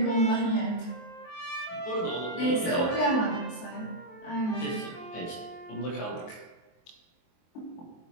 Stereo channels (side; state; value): right; late; 23 ms